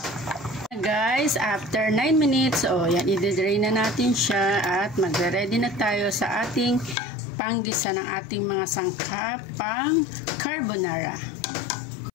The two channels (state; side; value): drops out; right; at 7.0 s